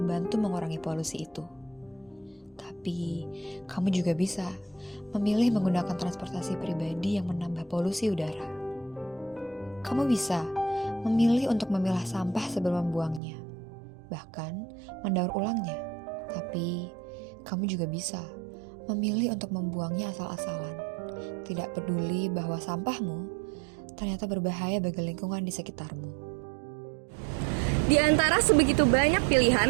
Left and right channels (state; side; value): drops out; left; at 13.2 s